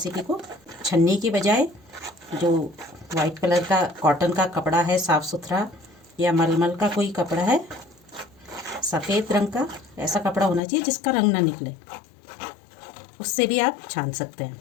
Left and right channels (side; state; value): right; drops out; at 10.6 s